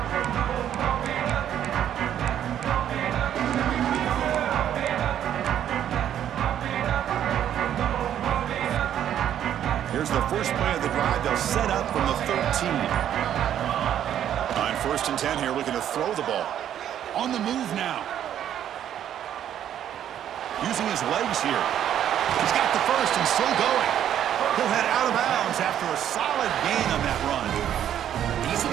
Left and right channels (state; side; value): quieter; left; 10.4 dB